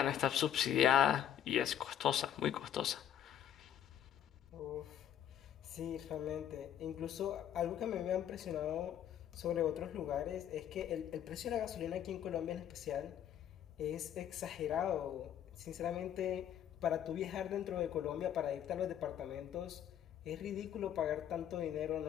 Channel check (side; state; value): right; quieter; 10.2 dB